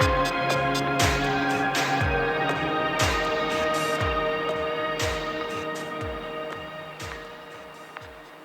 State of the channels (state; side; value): identical; both; correlation 1.00